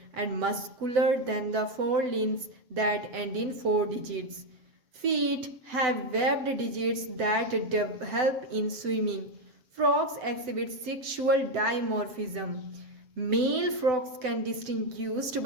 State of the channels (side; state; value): left; late; 7.9 ms